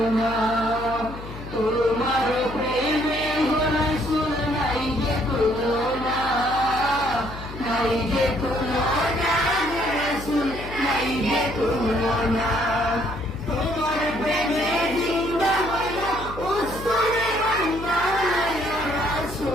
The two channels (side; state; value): left; noise; hum, 12 dB below the sound